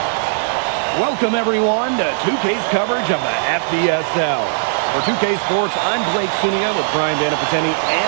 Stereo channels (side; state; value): left; silent; 56 dB below the other